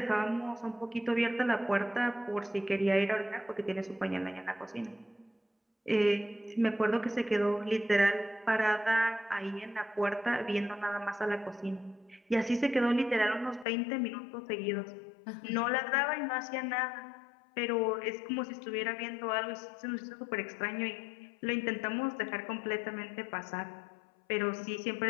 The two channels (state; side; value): drops out; right; at 13.7 s